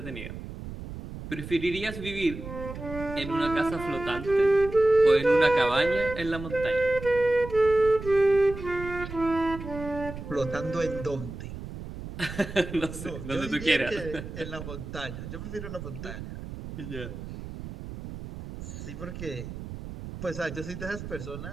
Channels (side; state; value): right; noise; rumble, 10 dB below the sound